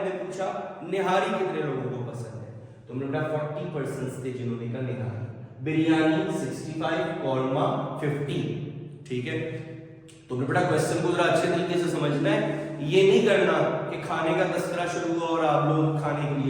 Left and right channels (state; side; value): identical; both; correlation 1.00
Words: पूछा निहारी कितने लोगों को पसंद है, तो हमने बेटा 40% थे जिन्होंने कहा निहारी। बिरयानी 65, कौरमा 50। ठीक है, तो बेटा क्वेश्चन को जरा अच्छे तरीके से समझना है, ये नहीं करना कि खाने का तस्करा शुरू हुआ और आप लोग खाने के